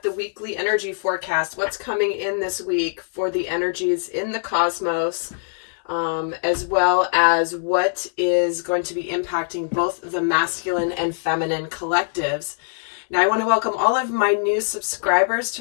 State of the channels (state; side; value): silent; right; 64 dB below the other